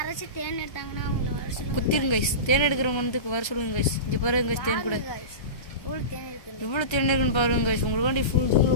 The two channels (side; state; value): right; late; 1.3 ms